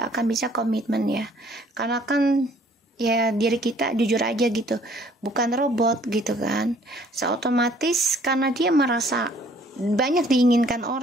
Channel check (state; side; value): normal; both; correlation 0.59